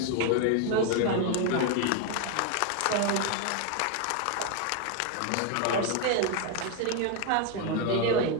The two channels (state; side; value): different; both; correlation 0.01